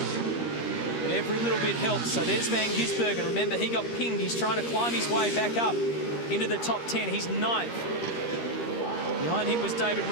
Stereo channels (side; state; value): right; late; 13 ms